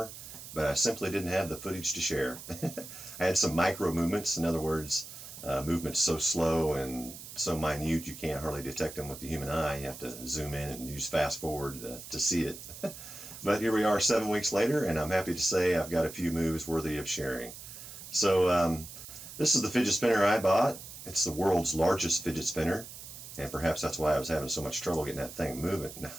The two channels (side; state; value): right; noise; hiss, 13 dB below the sound